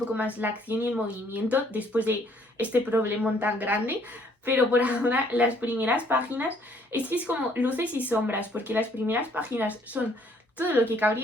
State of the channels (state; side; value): normal; both; correlation 0.63